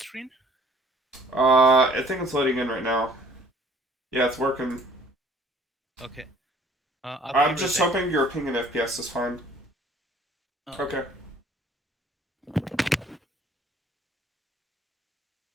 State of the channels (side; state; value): both; normal; correlation 0.56